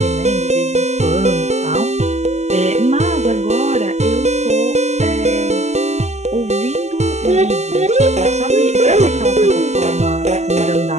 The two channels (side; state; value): left; late; 0.33 ms